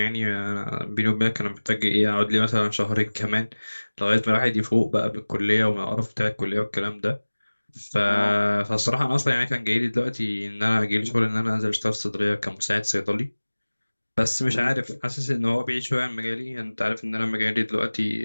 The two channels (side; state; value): both; inverted; correlation -1.00